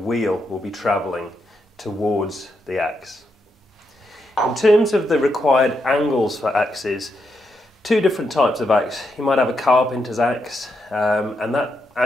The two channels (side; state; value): both; normal; correlation 0.82